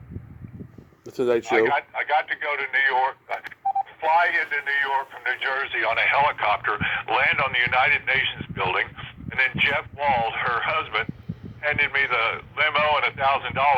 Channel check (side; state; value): both; identical; correlation 1.00